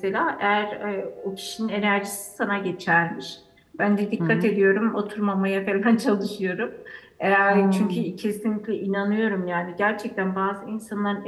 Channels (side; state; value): both; identical; correlation 1.00